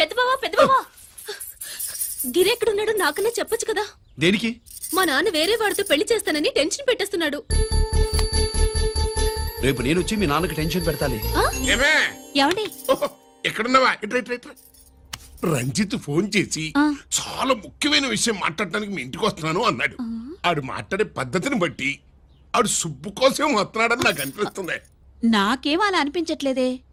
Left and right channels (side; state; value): both; identical; correlation 1.00